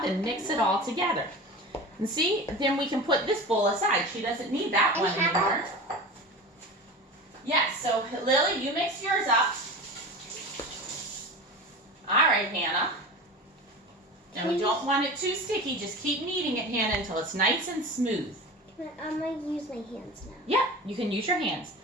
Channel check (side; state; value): both; normal; correlation 0.32